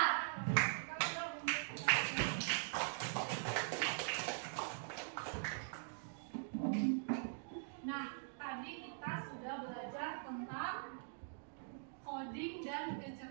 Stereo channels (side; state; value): left; silent; digital silence